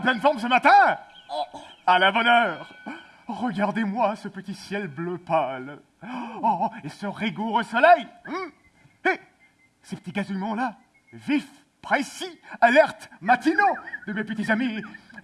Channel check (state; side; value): identical; both; correlation 1.00